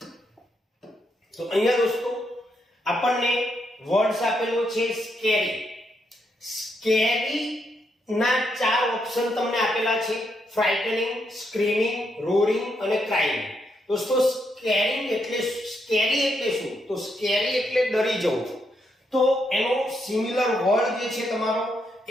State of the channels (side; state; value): both; normal; correlation 0.79